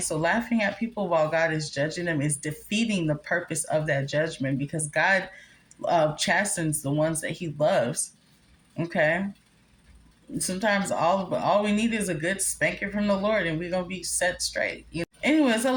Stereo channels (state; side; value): identical; both; correlation 1.00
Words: laughing at people while God is judging them is defeating the purpose of that judgment, because God chastens the ones that he loves. Okay? Sometimes all we need is a good spanking from the Lord, and we're going to be set straight. You know? Anyways, I